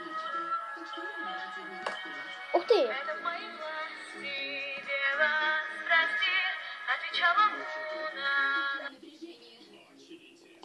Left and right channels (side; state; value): both; identical; correlation 1.00